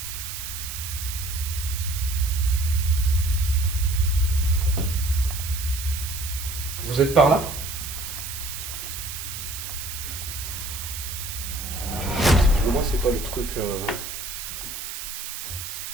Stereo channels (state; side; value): noise; right; hiss, 7 dB below the sound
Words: Vous êtes par là? pas le truc...